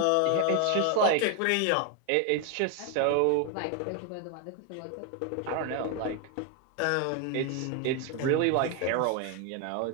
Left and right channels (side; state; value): both; different; correlation 0.01